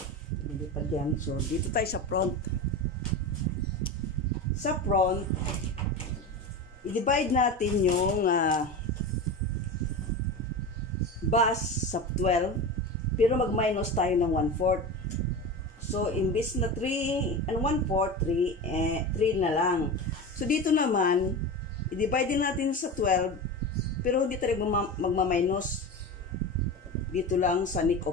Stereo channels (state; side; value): normal; both; correlation 0.26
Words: Lilipad yan. So, dito tayo sa front. Sa front, i-divide natin yung bus sa 12, pero mag-minus tayo ng 1/4. So, imbis na 3 and 1/4, 3 na lang. So, dito naman, i-divide din natin sa 12, pero hindi tayo magma-minus. Dito lang sa neck